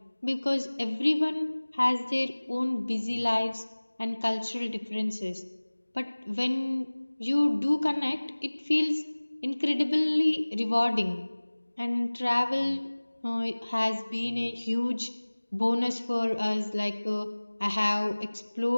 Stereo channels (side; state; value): both; inverted; correlation -1.00